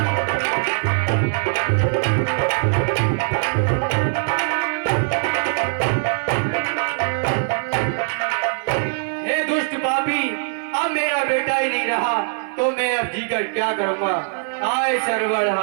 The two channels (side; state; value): left; silent; digital silence